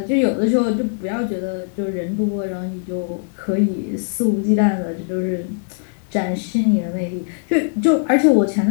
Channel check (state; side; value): silent; right; 66 dB below the other